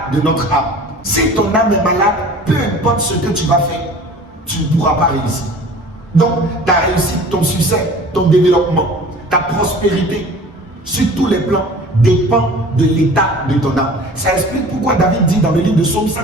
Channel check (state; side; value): normal; both; correlation 0.44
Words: de notre âme? Si ton âme est malade, peu importe ce que tu vas faire, tu ne pourras pas réussir. Donc ta réussite, ton succès, ton développement, ta prospérité sur tous les plans dépend de l'état de ton âme. Ça explique pourquoi David dit dans le livre de Psaume